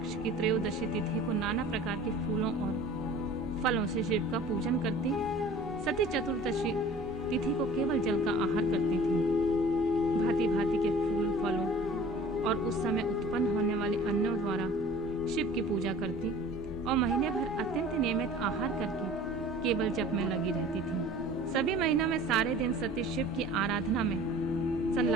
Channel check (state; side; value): normal; both; correlation 0.45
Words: की त्रयोदशी तिथि को नाना प्रकार के फूलों और फलों से शिव का पूजन करती। सती चतुर्दशी तिथि को केवल जल का आहार करती थी। भांति भांति के फूल, फलों और उस समय उत्पन्न होने वाले अन्नों द्वारा शिव की पूजा करती और महीने भर अत्यंत नियमित आहार करके केवल जप में लगी रहती थी। सभी महीनों में सारे दिन सती शिव की आराधना में